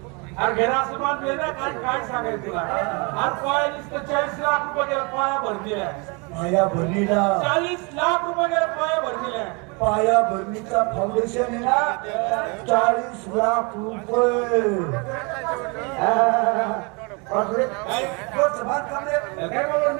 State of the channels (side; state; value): left; quieter; 31.1 dB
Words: अरे घरा असं बांधले ना, काय काय सांगायचं तुला? अरे पाया नुसतं 40 लाख रुपये गेला पाया भरतीला. पाया भरणीला 40 लाख रुपये गेला पाया भरतीला. पाया भरणीचा फाउंडेशन आहे ना 40 लाख रुपये. काय बावळ